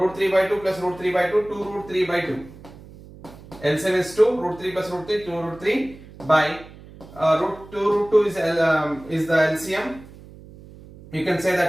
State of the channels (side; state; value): right; noise; hum, 19 dB below the sound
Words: 3 by 2 plus root 3 by 2, 2 root 3 by 2. LCM is 2, root 3 plus root 3, 2 root 3 by root 2 is the LCM. You can say